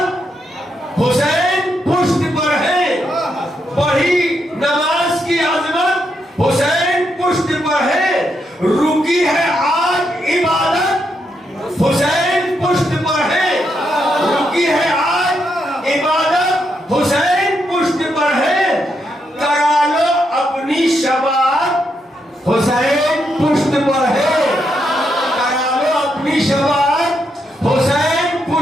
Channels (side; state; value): both; normal; correlation 0.80